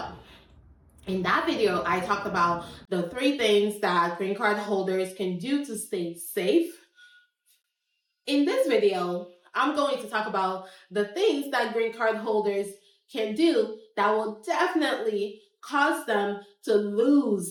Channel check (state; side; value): identical; both; correlation 1.00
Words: in that video, I talked about the 3 things that green card holders can do to stay safe. In this video, I'm going to talk about the things that green card holders can do that will definitely cause them to